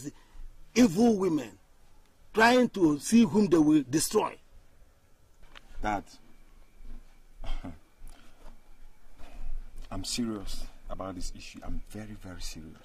evil women trying to see whom they will destroy. Dad, I'm serious about this issue. I'm very, very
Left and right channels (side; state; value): both; identical; correlation 1.00